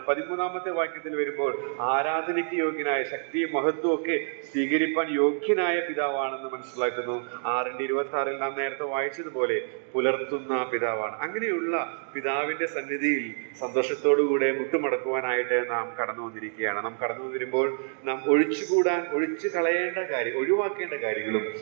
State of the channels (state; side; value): silent; left; digital silence